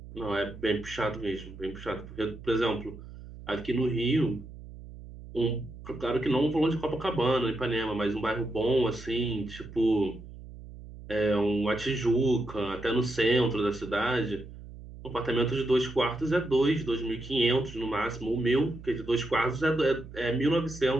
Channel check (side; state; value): right; noise; hum, 15 dB below the sound